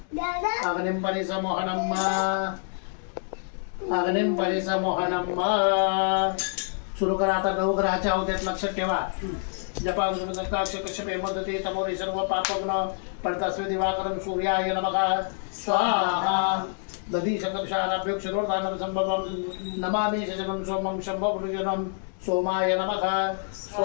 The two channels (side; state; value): right; silent; digital silence